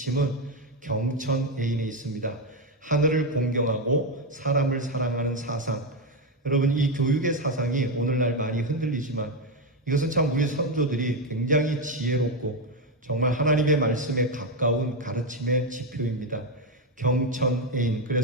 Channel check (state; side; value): normal; both; correlation 0.08